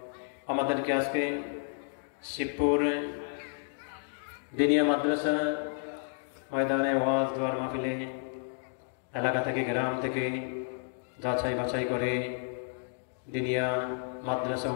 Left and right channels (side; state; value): right; silent; digital silence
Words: আমাদেরকে আজকে শিবপুর দিনিয়া মাদ্রাসা ময়দানে ওয়াজ দোয়ার মাহফিলে এলাকা থেকে গ্রাম থেকে যাচাই বাছাই করে দিনিয়া মাদ্রাসা